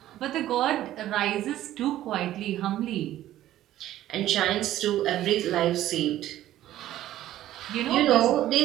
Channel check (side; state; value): left; quieter; 13.5 dB